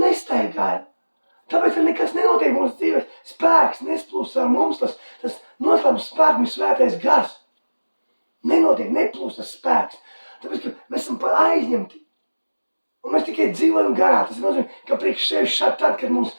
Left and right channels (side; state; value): both; inverted; correlation -1.00